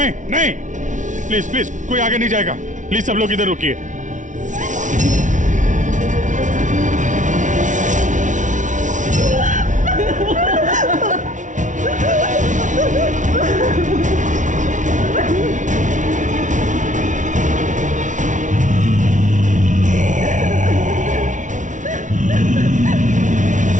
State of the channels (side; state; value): left; late; 0.37 ms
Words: नहीं, प्लीज प्लीज कोई आगे नहीं जाएगा। प्लीज सब लोग इधर रुकिए।